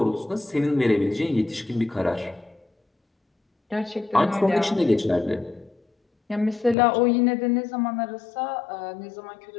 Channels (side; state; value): right; drops out; at 6.8 s